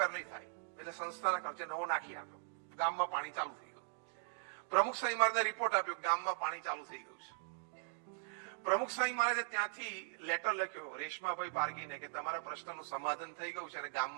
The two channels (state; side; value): silent; left; digital silence